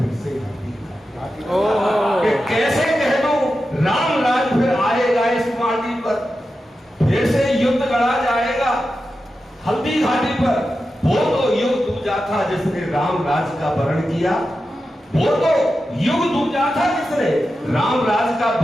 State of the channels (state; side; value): normal; both; correlation 0.91